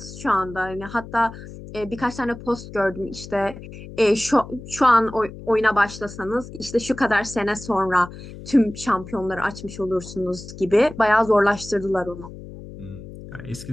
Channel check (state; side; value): noise; left; hum, 14 dB below the sound